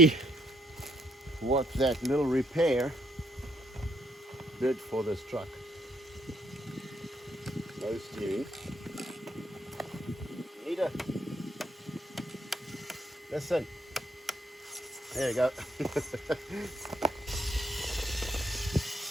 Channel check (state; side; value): normal; both; correlation 0.70